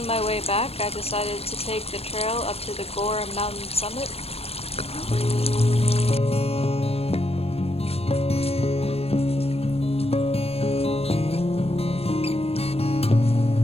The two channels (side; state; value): right; late; 0.29 ms